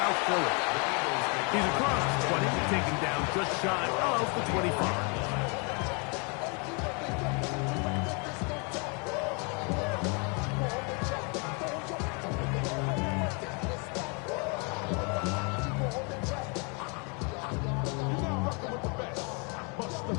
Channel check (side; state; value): right; quieter; 34.1 dB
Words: Philly. He's across the 20, taking down just shy of the 25.